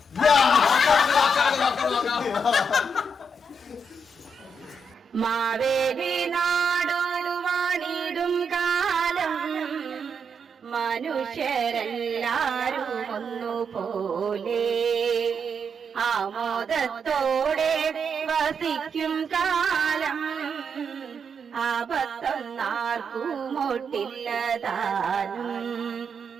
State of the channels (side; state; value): both; normal; correlation 0.80